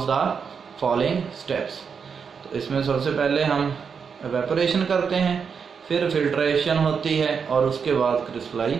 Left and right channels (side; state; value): left; quieter; 6.2 dB